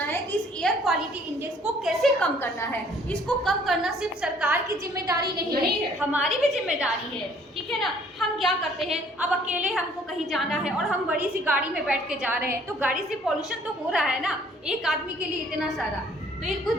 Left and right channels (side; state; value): both; normal; correlation 0.59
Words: है कि इस एयर क्वालिटी इंडेक्स को कैसे कम करना है। इसको कम करना सिर्फ सरकार की जिम्मेदारी नहीं है, हमारी भी जिम्मेदारी है, ठीक है ना। हम क्या करते हैं, अब अकेले हमको कहीं जाना है और हम बड़ी सी गाड़ी में बैठ के जा रहे हैं, तो गाड़ी से पॉल्यूशन तो हो रहा है ना, एक आदमी के लिए इतना सारा, तो ये कुछ